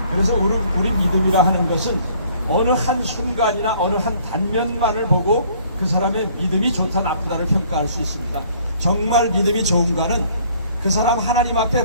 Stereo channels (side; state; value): both; inverted; correlation -0.58